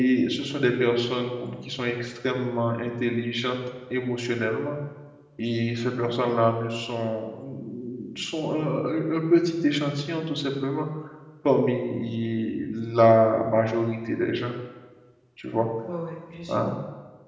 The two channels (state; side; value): identical; both; correlation 1.00